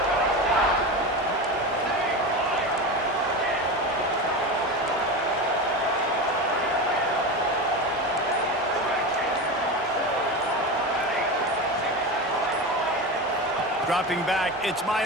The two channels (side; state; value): both; normal; correlation 0.23